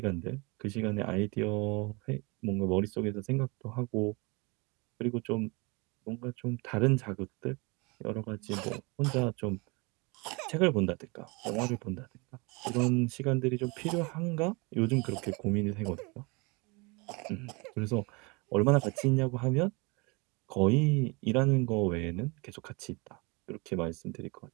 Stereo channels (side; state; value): left; quieter; 28.2 dB